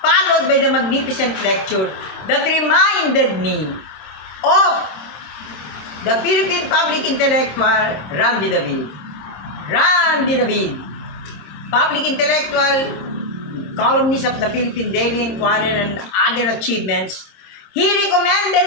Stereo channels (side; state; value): right; late; 26 ms